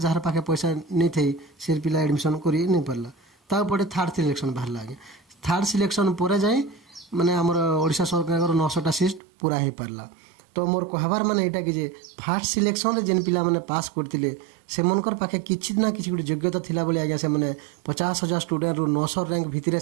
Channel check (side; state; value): left; drops out; at 9.2 s